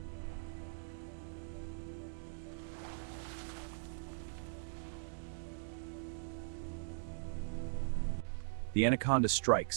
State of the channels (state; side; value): silent; left; digital silence